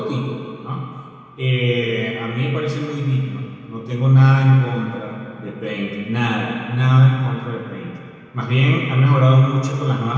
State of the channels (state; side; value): identical; both; correlation 1.00